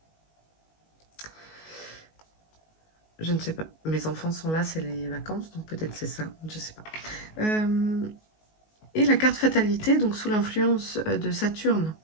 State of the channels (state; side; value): late; right; 19 ms